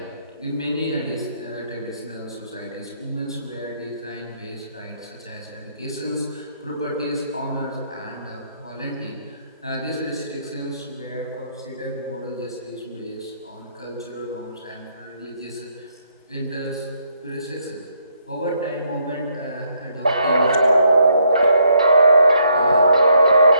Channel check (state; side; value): inverted; both; correlation -0.72